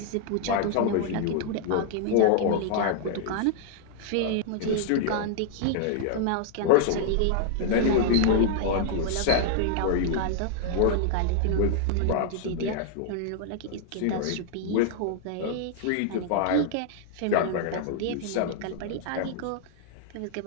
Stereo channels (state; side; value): different; both; correlation 0.00